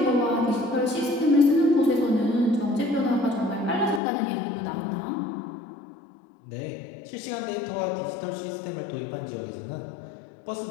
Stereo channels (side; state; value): right; drops out; at 4.0 s